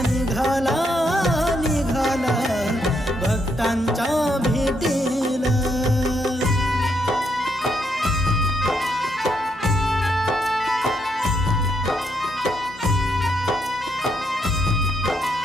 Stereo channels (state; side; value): normal; both; correlation 0.77